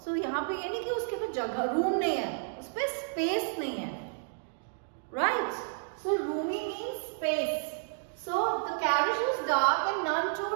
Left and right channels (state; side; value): silent; left; digital silence